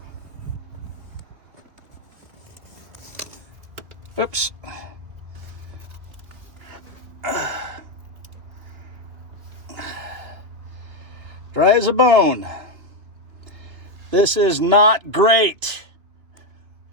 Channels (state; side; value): late; left; 2.8 ms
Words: Whoops. Dry as a bone. This is not great.